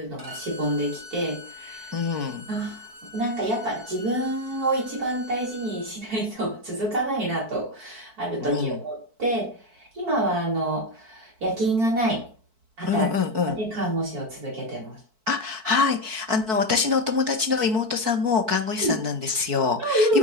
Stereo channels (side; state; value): left; late; 4.6 ms